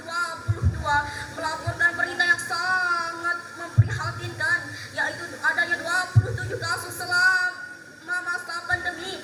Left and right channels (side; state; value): both; identical; correlation 1.00